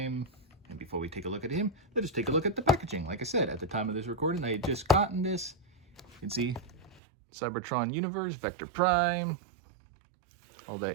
And before we take a look at him, let us take a look at the packaging. Like I said, at the time of this recording, I had just gotten this. You can see Cybertron Universe, Vector Prime, all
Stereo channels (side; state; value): left; drops out; at 7.0 s